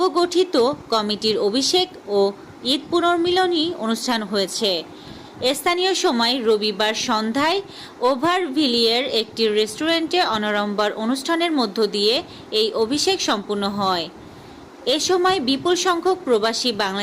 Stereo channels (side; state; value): both; identical; correlation 1.00